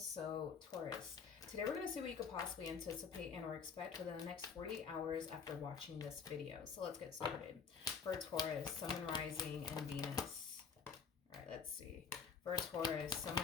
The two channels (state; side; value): quieter; right; 6.1 dB